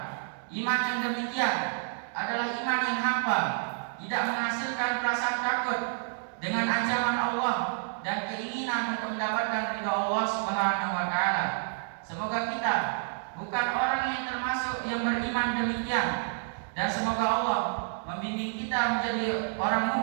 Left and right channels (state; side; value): silent; left; digital silence